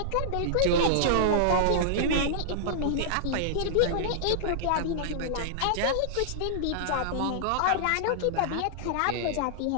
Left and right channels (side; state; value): both; different; correlation -0.01